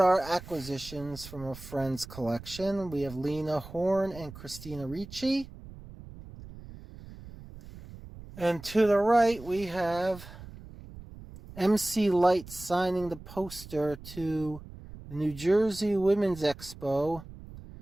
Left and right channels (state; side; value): noise; right; rumble, 16 dB below the sound